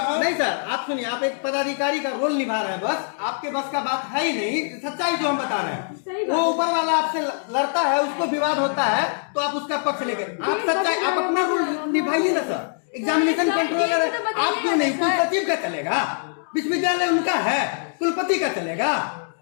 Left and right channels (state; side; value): silent; right; digital silence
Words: नहीं सर आप सुनिए, आप एक पदाधिकारी का रोल निभा रहे हैं, बस आपके बस का बात है ही नहीं, सच्चाई जो हम बता रहे हैं। वो ऊपर वाला आपसे लड़ता है, उसको विवाद होता है तो आप उसका पक्ष लेकर आप सच्चाई, आप अपना रोल निभाइए ना सर। एग्जामिनेशन कंट्रोलर आप क्यों नहीं? कुल सचिव का चलेगा, विश्वविद्यालय उनका है, कुलपति का चलेगा,